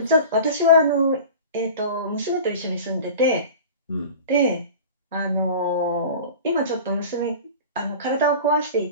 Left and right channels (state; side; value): inverted; both; correlation -0.37